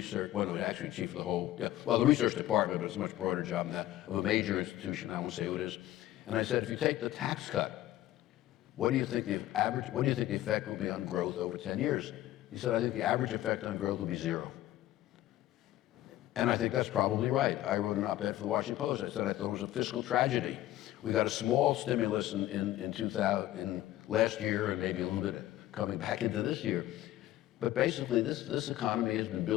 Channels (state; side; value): quieter; right; 14.4 dB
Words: well, actually chief of the whole, the research department, but it's a much broader job than that, of a major institution, I won't say who it is. And I said, if you take the tax cut, what do you think the effect will be on growth over 10 years? He said, I think the average effect on growth will be 0. And I think that's probably right. I wrote an op-ed for the Washington Post. I said I thought it was a fiscal tragedy. We got a small stimulus in last year and maybe a little bit coming back into this year. But basically, this economy has been